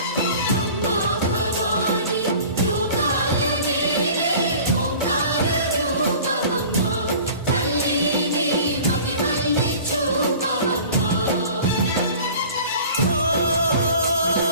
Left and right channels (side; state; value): both; inverted; correlation -0.43